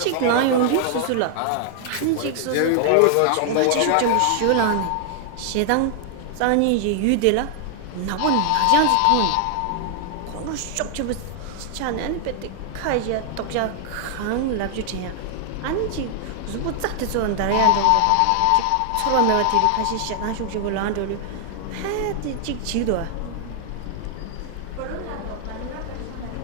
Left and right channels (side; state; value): both; different; correlation 0.00